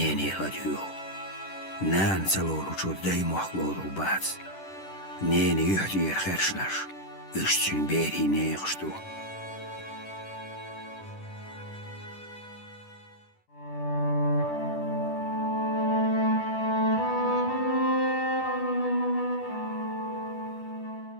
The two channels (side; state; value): right; late; 10 ms